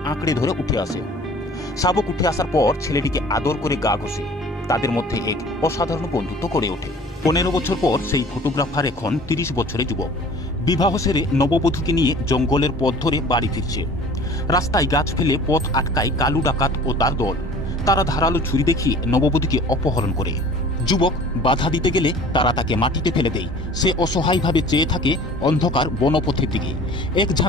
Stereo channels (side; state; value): both; normal; correlation 0.47